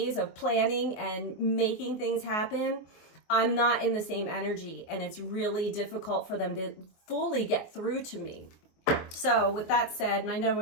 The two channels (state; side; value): late; right; 24 ms